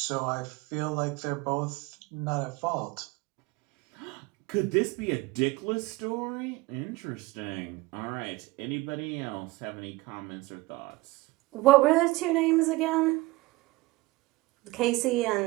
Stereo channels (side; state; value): left; quieter; 20.8 dB